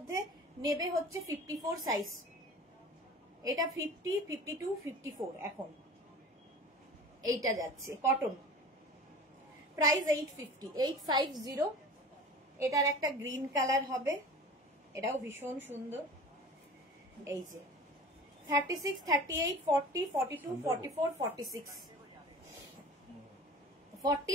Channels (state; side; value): normal; both; correlation 0.39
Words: নেবে হচ্ছে 54 সাইজ। এটা 50, 52, 54 এখন এইটা যাচ্ছে কটন। প্রাইস 850, 850। এটার একটা গ্রিন কালার হবে, এটাও ভীষণ সুন্দর। এই যে 36, 38, 40, 42, 44, 46,